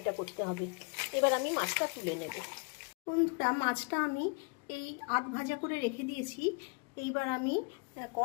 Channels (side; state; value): right; quieter; 33.4 dB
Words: করতে হবে। এবার আমি মাছটা তুলে নেব। বন্ধুরা, মাছটা আমি এই আধ ভাজা করে রেখে দিয়েছি। এইবার আমি